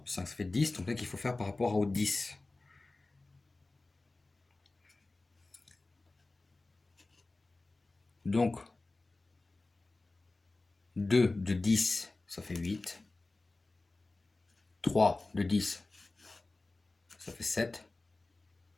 plus 5, ça fait 10. Donc là, qu'il faut faire par rapport au 10. Donc, 2 de 10, ça fait 8. 3 de 10, ça fait 7.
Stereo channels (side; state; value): right; quieter; 3.2 dB